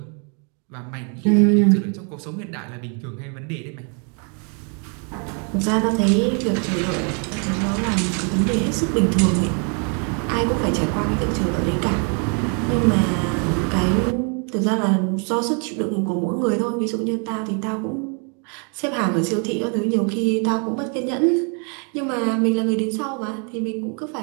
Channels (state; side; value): quieter; left; 37.9 dB